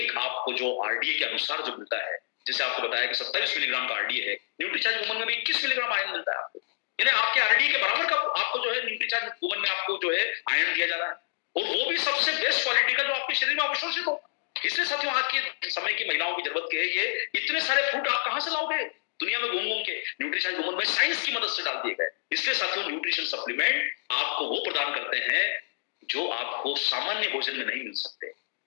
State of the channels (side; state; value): right; silent; digital silence